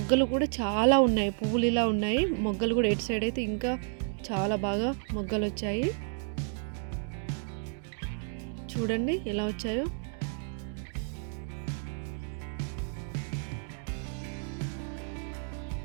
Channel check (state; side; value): silent; left; 55 dB below the other